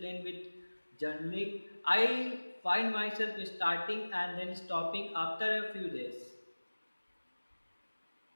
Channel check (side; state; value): both; inverted; correlation -1.00